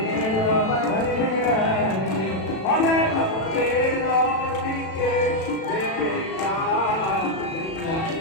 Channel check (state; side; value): late; right; 37 ms